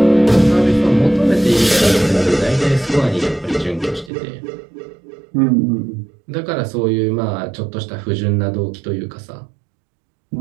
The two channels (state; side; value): drops out; left; at 4.1 s